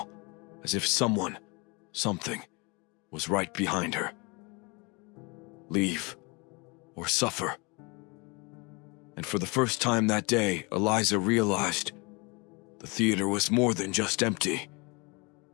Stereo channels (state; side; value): quieter; right; 28.6 dB